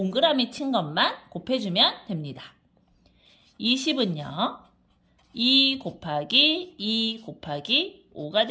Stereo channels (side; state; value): both; identical; correlation 1.00